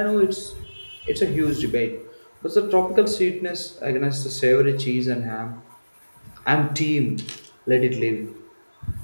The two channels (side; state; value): both; inverted; correlation -1.00